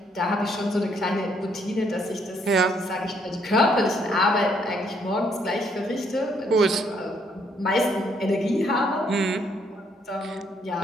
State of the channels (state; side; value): normal; both; correlation 0.70